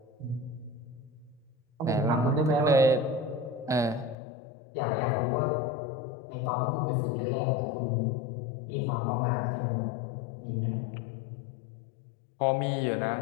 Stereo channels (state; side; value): drops out; right; at 4.2 s